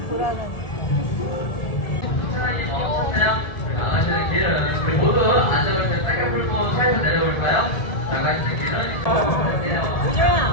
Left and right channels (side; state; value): right; late; 1.8 ms